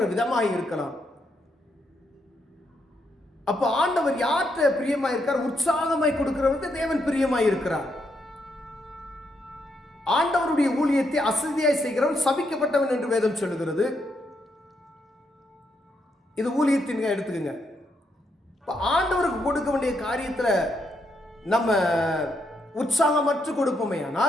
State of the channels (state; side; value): normal; both; correlation 0.78